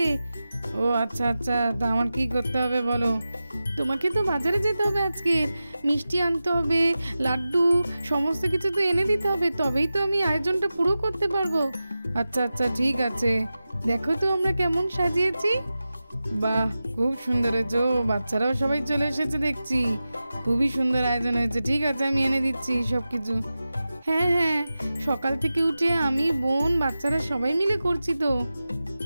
ও আচ্ছা আচ্ছা, তা আমার কি করতে হবে বলো? তোমাকে তো বাজারে যেতে হবে, আজকে মিষ্টি আনতে হবে, লাড্ডু, সমস্ত কিছু তো এনে দিতে হবে, তবেই তো আমি আয়োজনটা পুরো করতে পারবো। আচ্ছা আচ্ছা ঠিক আছে, দেখো তো আমরা কেমন সাজিয়েছি। বাহ, খুব সুন্দর হয়েছে। বাচ্চারাও সবাই চলে এসেছে দেখছি, খুবই সুন্দর আয়োজন হয়েছে। ঠিক আছে, আমি এনে দিচ্ছি সব কিছু। হ্যাঁ হ্যাঁ, সকাল থেকে উঠে আমি, বোন, বাচ্চারা সবাই মিলে করছি তো।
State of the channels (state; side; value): inverted; both; correlation -0.94